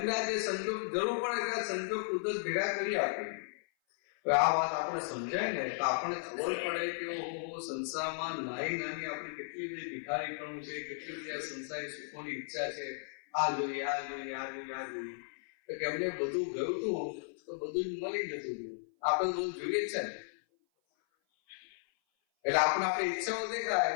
આ જે સંજોગ જરૂર પડે ત્યાં સંજોગ કુદરત ભેગા કરી આપે. આ વાત આપણે સમજાય ને તો આપણને ખબર પડે કે સંસારમાં નાની આપણી કેટલી બધી ભિખારીપણું છે, કેટલી બધી આ સંસારી સુખોની ઈચ્છા છે. આ જોઈએ, આ જોઈએ, આ જોઈએ, આ જોઈએ. તો કે એમને બધું ગયું હતું તો બધું જ મળી જતું હતું. આપણે બધું જોઈએ જ છે ને. એટલે આપણે આપણી ઈચ્છાઓ દેખાય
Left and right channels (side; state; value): right; silent; 54 dB below the other